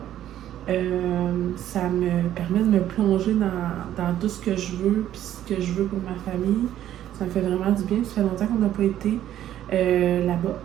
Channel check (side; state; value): left; quieter; 11.8 dB